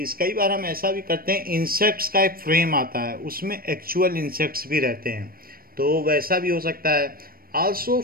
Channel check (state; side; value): late; left; 0.43 ms